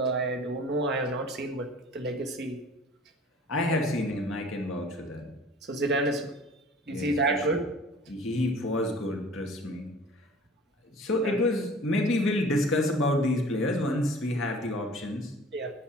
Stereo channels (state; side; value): normal; both; correlation 0.46